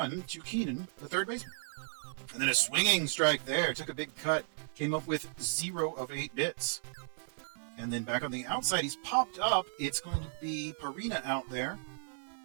to Keenan, the third baseman. And then a swinging strike there. Took a big cut. Came up with 0 of 8 bits. And then back on the outside, he's popped up. It's going to be Perina out there.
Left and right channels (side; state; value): left; silent; digital silence